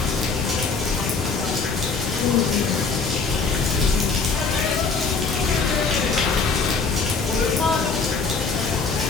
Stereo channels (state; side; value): quieter; right; 4.7 dB